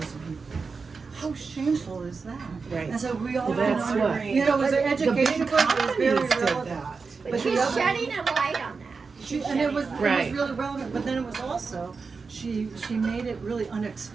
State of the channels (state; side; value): quieter; left; 4.7 dB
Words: people. How shameful is that? Right. And so we all Well, that's what- it was an education book, it was very relevant. But she's shedding a light on that. It was Right. really relevant, but then it was also, she made it really